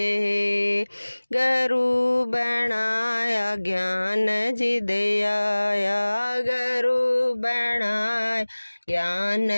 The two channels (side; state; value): both; inverted; correlation -1.00